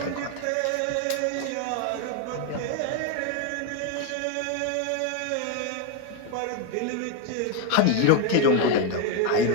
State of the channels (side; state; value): both; different; correlation 0.02